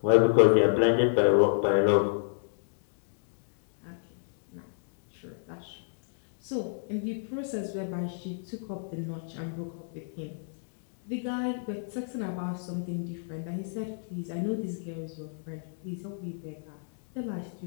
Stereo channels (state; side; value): silent; right; digital silence